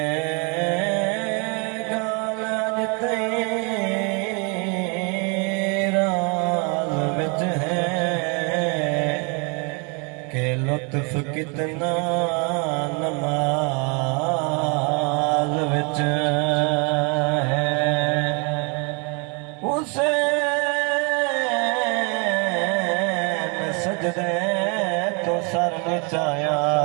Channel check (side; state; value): left; quieter; 34.0 dB